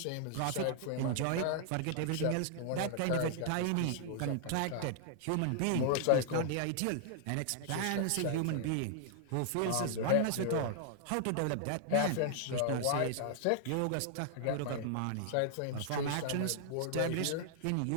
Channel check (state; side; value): different; both; correlation -0.01